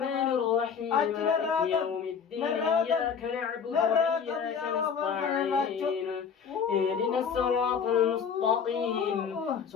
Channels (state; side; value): quieter; right; 6.7 dB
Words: الرحيم مالك يوم الدين إياك نعبد وإياك نستعين اهدنا الصراط المستقيم